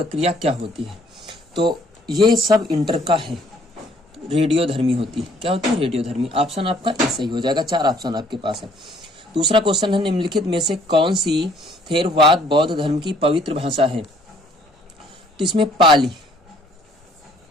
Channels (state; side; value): normal; both; correlation 0.61